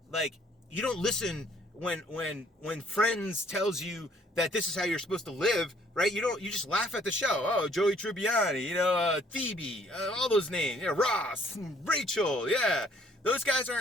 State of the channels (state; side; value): normal; both; correlation 0.62